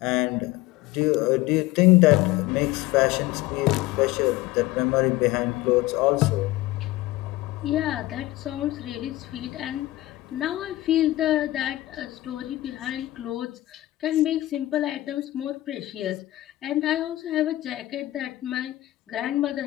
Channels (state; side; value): quieter; right; 17.1 dB